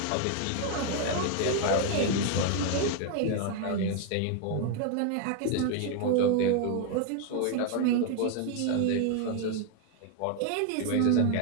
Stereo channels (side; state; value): both; different; correlation 0.00